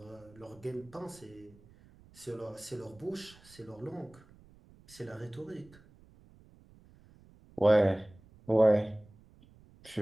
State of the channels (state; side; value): noise; right; rumble, 25 dB below the sound